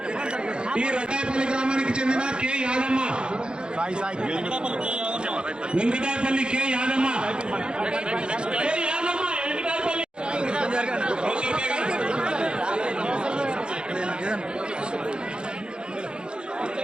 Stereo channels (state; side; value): late; left; 0.051 ms